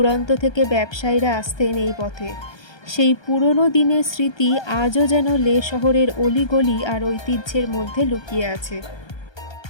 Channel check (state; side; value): late; right; 1.3 ms